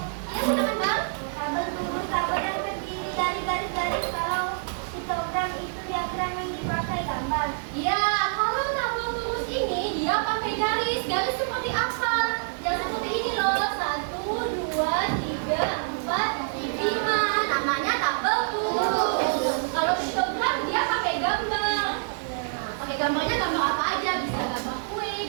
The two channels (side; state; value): left; silent; 58 dB below the other